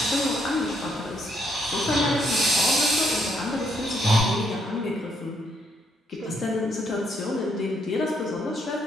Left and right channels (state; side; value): normal; both; correlation 0.73